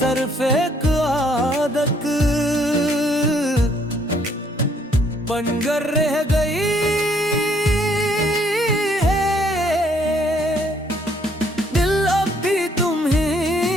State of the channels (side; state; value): both; normal; correlation 0.66